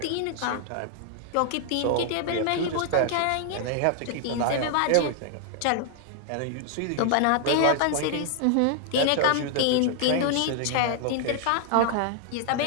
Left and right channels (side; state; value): both; different; correlation 0.00